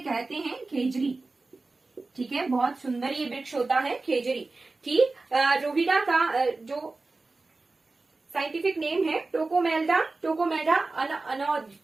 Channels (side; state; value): left; quieter; 3.5 dB